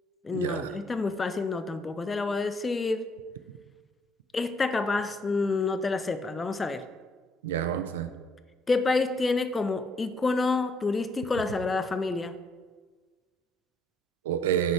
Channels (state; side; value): normal; both; correlation 0.67